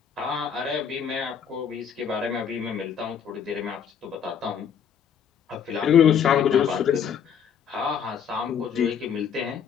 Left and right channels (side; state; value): right; quieter; 7.7 dB